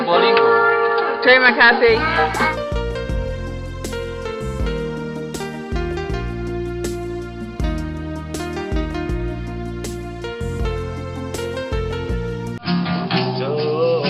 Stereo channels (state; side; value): identical; both; correlation 1.00